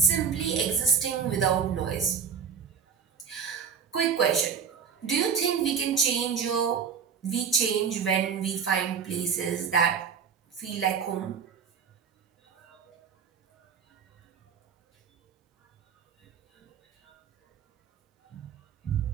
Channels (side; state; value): left; quieter; 6.6 dB